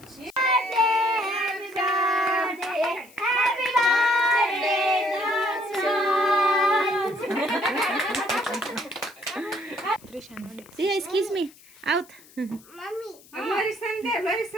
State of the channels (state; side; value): noise; left; hiss, 25 dB below the sound